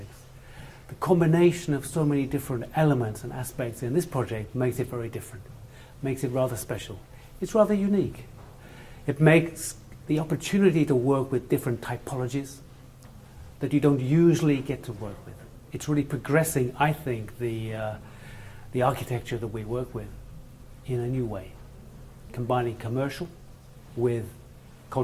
The combination of so many different elements and aspects in this project makes it very different, makes it rather special. It's rather unique. It makes the opportunity to work with different typologies that you don't usually get to work with. It's really progressing, I think, the architecture that we work with in a new way, combining commercial with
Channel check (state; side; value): identical; both; correlation 1.00